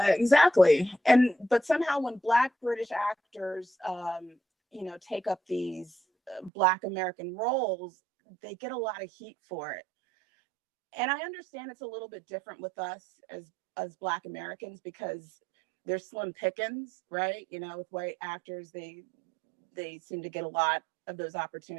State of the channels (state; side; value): drops out; left; at 6.5 s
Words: exactly. But somehow when Black British actors, take up these Black American roles, they get a lot of heat for it. And I understand it's a little bit different with us as Black Americans because they're slim pickings, right? With white actors, they seem to get a lot of those